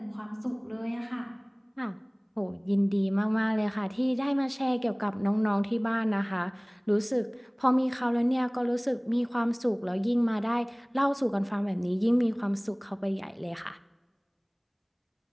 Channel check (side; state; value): both; identical; correlation 1.00